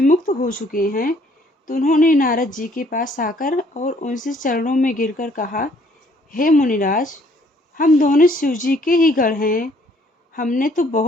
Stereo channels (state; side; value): normal; both; correlation 0.63